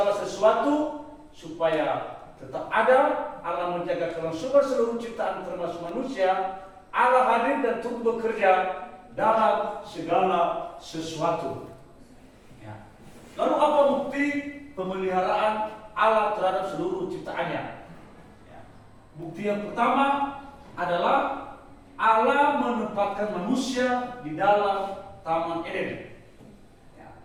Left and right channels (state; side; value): identical; both; correlation 1.00